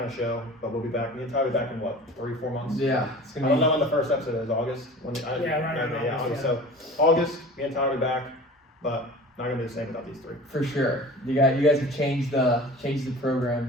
of show, but we'll be back. Me and Tyler will be back in, 3-4 months? Yeah. It's I gonna don't be... know when the first episode is. August? August, August. So, August, me and Tyler will be back, but not going to be the same without these 3. For sure. You guys have changed the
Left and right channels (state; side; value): normal; both; correlation 0.40